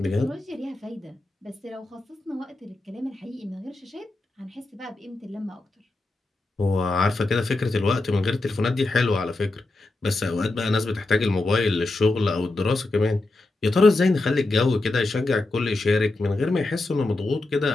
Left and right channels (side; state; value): right; quieter; 3.0 dB